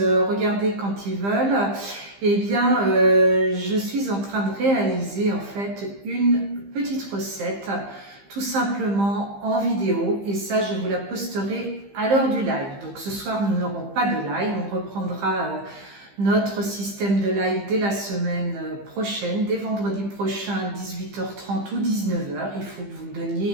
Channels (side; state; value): left; late; 15 ms